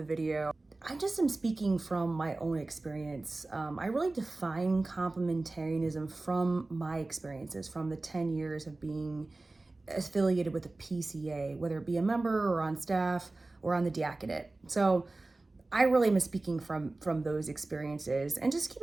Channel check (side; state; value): left; quieter; 3.1 dB